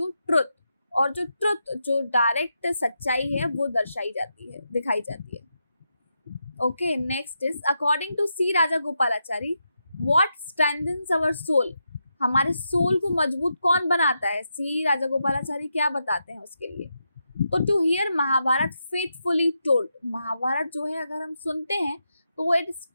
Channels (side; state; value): both; inverted; correlation -0.85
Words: ट्रुथ, और जो ट्रुथ जो डायरेक्ट सच्चाई है वो दर्शाई जाती है, दिखाई जाती है. Okay, next is according to C Raja Gopalachari what strengthens our soul. हमारे सोल को मजबूत कौन बनाता है? सी राजा गोपालाचारी क्या बताते हैं उसके लिए? तो to hear Mahabharat faithfully told. Mahabharat जो है अगर हम सुनते हैं तो इट